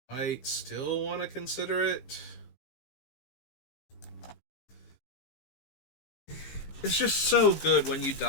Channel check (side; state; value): right; late; 15 ms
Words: I still want to consider it. It's just so good when you